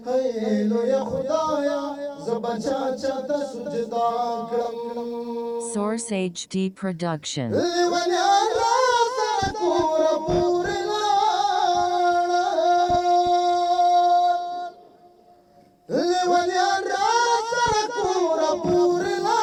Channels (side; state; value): both; identical; correlation 1.00